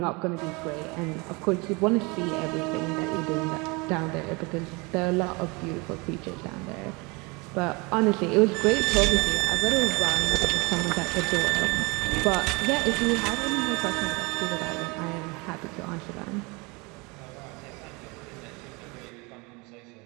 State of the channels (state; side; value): quieter; left; 27.4 dB